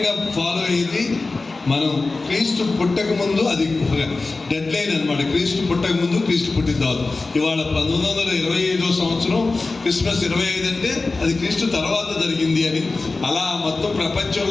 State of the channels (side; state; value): right; quieter; 3.6 dB